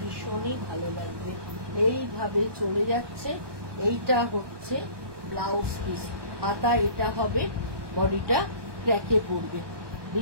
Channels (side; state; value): left; late; 1.2 ms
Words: ভালো লাগবে। এইভাবে চলে যাচ্ছে। এইটা হচ্ছে ব্লাউজ পিস, হাতা এটা হবে, বডিটা ক্র্যাকে পড়বে,